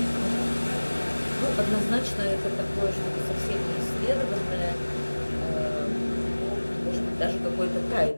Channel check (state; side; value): inverted; both; correlation -1.00